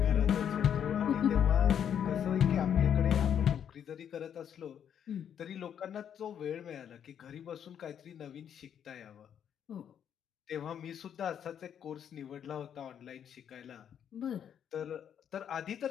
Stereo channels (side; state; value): right; quieter; 8.8 dB